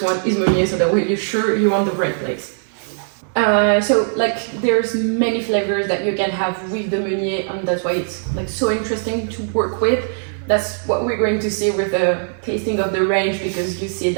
one is Meunier, so that way you're sure you're on the right place. So like there's many flavors that you can have with the Meunier, and that's why it's like so interesting to work with. That's what we're going to see with the tasting of the range, because you see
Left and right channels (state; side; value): silent; left; digital silence